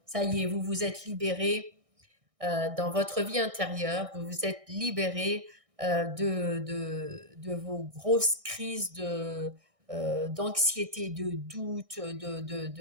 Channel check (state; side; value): late; left; 1.6 ms